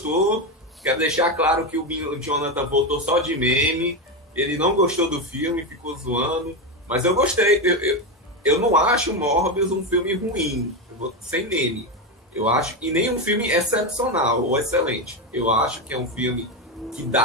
Quero deixar claro que o Jonathan votou só de meme. Ele não gostou do filme, ficou zoando. Mas eu gostei. Eu não acho o Morbius um filme ruim. Sem meme. Eu acho. E nem um filme excepcional ou excelente. Eu acho que é um filme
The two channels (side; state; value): both; normal; correlation 0.13